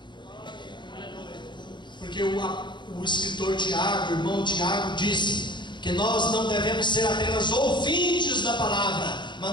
Porque o escritor Tiago, o irmão Tiago, disse que nós não devemos ser apenas ouvintes da palavra, mas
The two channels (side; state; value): right; late; 0.22 ms